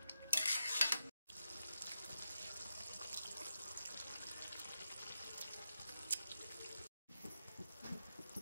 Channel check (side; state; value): both; inverted; correlation -0.87